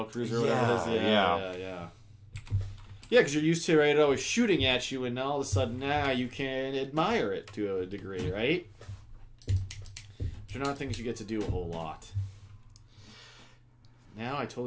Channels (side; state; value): both; identical; correlation 1.00